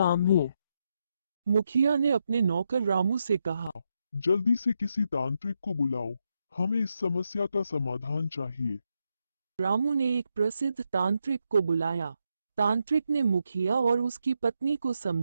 है। मुखिया ने अपने नौकर रामू से कहा, जल्दी से किसी तांत्रिक को बुलाओ, हमें इस समस्या का समाधान चाहिए। रामू ने एक प्रसिद्ध तांत्रिक को बुलाया। तांत्रिक ने मुखिया और उसकी पत्नी को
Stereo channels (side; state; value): both; inverted; correlation -0.82